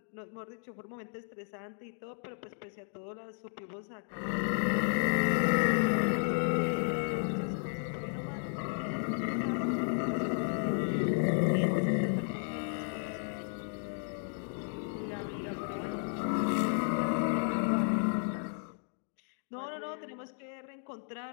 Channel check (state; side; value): silent; right; 55 dB below the other